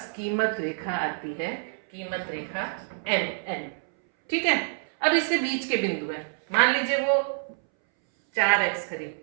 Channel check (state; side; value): silent; left; 60 dB below the other